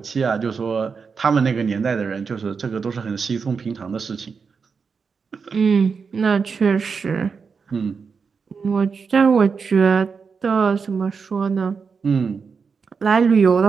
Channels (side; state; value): left; quieter; 5.5 dB